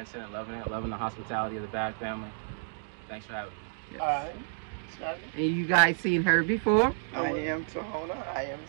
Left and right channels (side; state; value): left; silent; digital silence